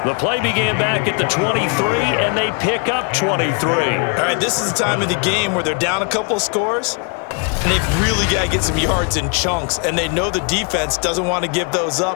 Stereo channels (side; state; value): right; quieter; 37.2 dB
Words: The play began back at the 23, and they pick up 23. All right, this is the time of the game where they're down a couple of scores, and they've really got to get some yards in chunks, and they know the defense doesn't want to give those